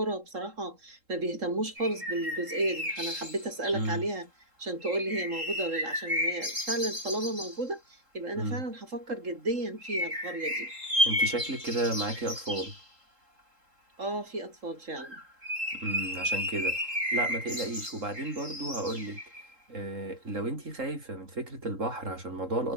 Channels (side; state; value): left; late; 3.7 ms